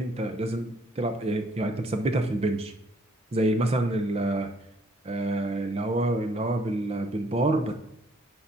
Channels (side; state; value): both; normal; correlation 0.65